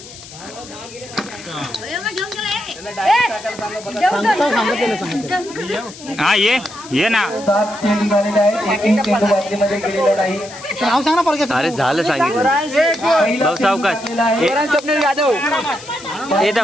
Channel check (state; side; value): noise; left; hiss, 17 dB below the sound